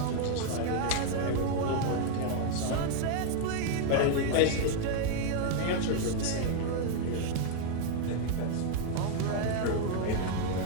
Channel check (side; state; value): both; different; correlation 0.00